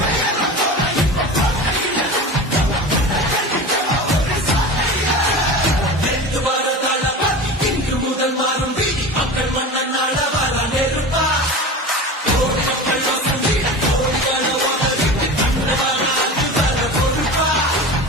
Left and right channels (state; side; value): normal; both; correlation 0.31